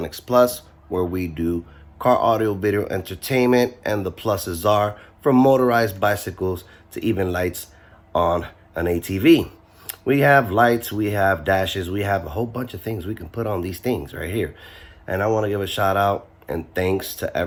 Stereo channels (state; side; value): identical; both; correlation 1.00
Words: Plus, where we do car audio video entertainment, and the pluses are from motorized bicycles to even lights on an ATV. We have lights, we have dashes, we have a whole bunch of things we can put on these things right here. And I want to give a shout out and thanks to